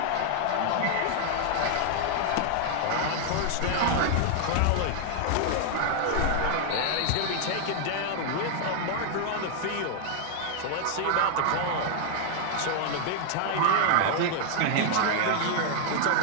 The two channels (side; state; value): both; different; correlation 0.00